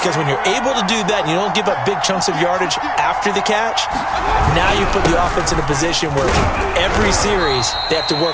when you're able to do that and you don't give up big chunks of yardage after the catch, now you put the offense in a position where every series they have to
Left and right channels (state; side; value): identical; both; correlation 1.00